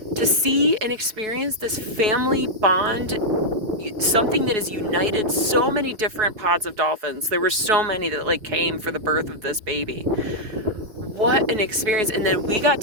To see and experience this family bond, something that has united so many different pods of dolphins. There were so many that like came for the birth of this baby. What an experience. And then we got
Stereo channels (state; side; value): late; left; 5.0 ms